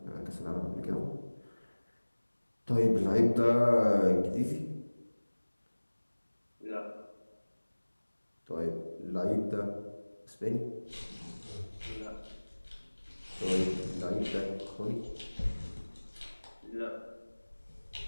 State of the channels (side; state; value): both; inverted; correlation -1.00